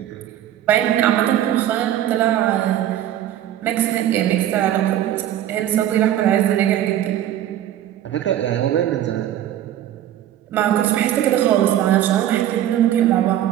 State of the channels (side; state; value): left; quieter; 11.8 dB